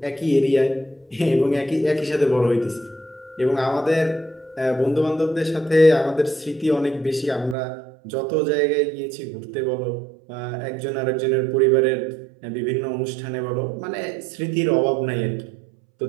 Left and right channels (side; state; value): left; drops out; at 7.6 s